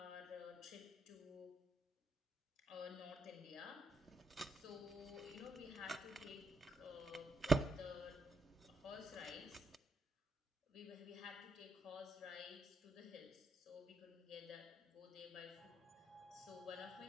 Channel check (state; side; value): normal; both; correlation 0.78